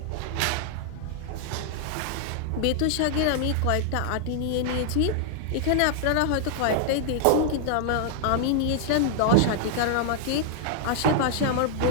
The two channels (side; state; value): both; different; correlation 0.00